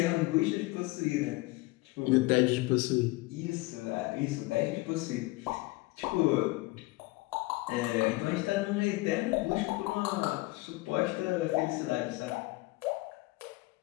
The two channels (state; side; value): quieter; right; 21.9 dB